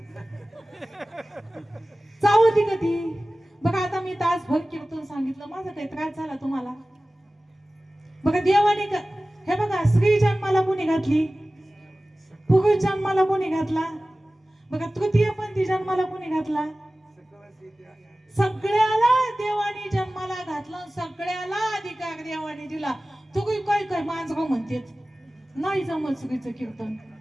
चावती का ती? बघा आता मी तासभर कीर्तन सांगितलं माझा काही त्रास झाला तुम्हाला? बघा देवाने हे बघा स्त्री जन्माला कोणी घातली? पुरुष जन्माला कोणी घातला? बघा तृतीयपंथी जन्माला कोणी घातला? सगळ्याला देवाने जन्माला घातलं. सगळ्याला अधिकार देवाने दिला. तुम्ही काय काय मांजगाव म्हणतेत नाही जमत स्त्रीचं कीर्तन.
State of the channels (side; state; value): both; normal; correlation 0.97